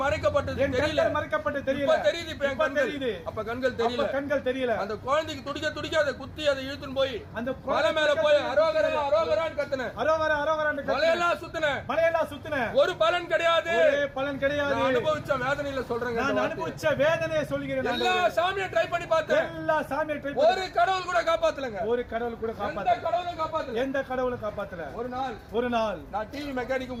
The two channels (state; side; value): identical; both; correlation 1.00